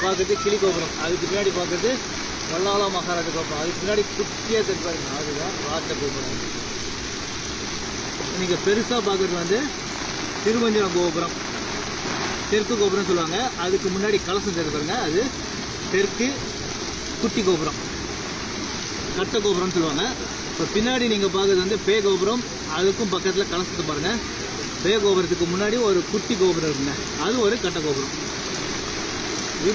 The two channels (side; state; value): both; identical; correlation 1.00